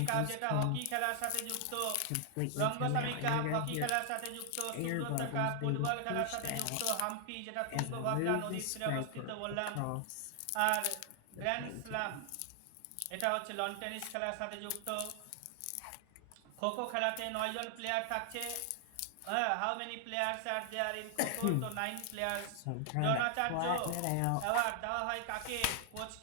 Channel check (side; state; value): both; different; correlation 0.00